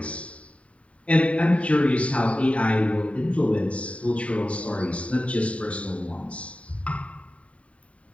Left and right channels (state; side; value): late; right; 0.065 ms